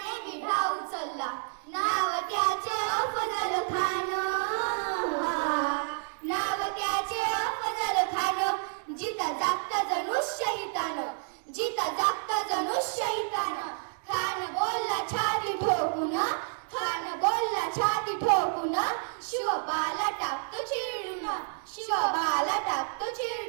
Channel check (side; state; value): left; silent; 58 dB below the other